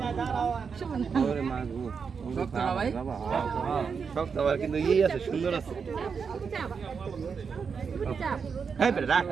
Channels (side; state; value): left; quieter; 5.9 dB